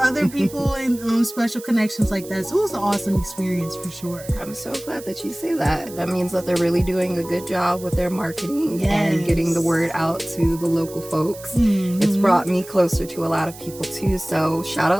people and special connections like that. So it was an awesome experience for sure. I'm so glad that you say that. That means that they're really doing a good job with their marketing and getting the word out to the local folks. It's brought me closer to a lot of people too. So shout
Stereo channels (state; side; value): noise; right; hiss, 17 dB below the sound